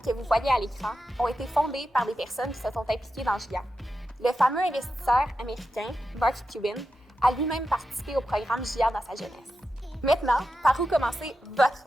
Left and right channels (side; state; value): both; normal; correlation 0.89